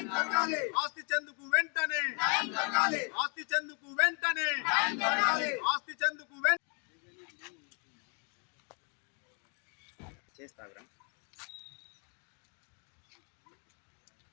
జరగాలి. ఆస్తి చెందుకు వెంటనే న్యాయం జరగాలి. ఆస్తి చెందుకు వెంటనే న్యాయం జరగాలి. ఆస్తి చెందుకు చేస్తాగ్రా.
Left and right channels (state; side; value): quieter; right; 37.9 dB